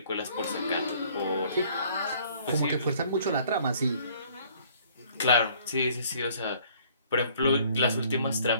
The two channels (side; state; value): both; inverted; correlation -0.58